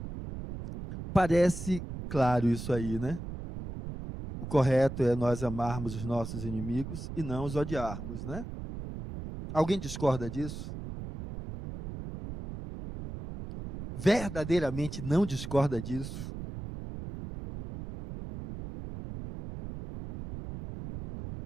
parece claro isso aí, né? O correto é nós amarmos os nossos inimigos e não os odiarmos, né? Alguém discorda disso? Verdadeiramente não discorda disso?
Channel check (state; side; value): noise; right; rumble, 8 dB below the sound